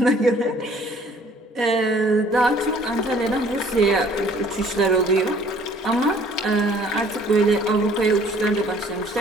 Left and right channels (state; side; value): normal; both; correlation 0.56